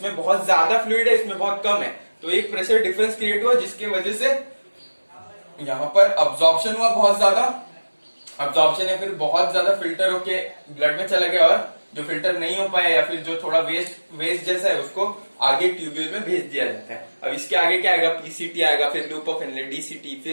बहुत ज्यादा फ्लूइड है, इसमें बहुत कम है, तो एक प्रेशर डिफरेंस क्रिएट हुआ जिसकी वजह से यहाँ पर अब्जॉर्प्शन हुआ बहुत ज्यादा, अब्जॉर्प्शन या फिर बहुत ज्यादा फिल्टर होके ब्लड में चला गया, और जो फिल्टर नहीं हो पाया या फिर जो थोड़ा वेस्ट जैसा है उसको आगे ट्यूब्यूल में भेज दिया जाता है। अब इसके आगे क्या आएगा, पीसीटी आएगा, फिर लूप ऑफ इनलेट, डीसीटी,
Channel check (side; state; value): both; inverted; correlation -1.00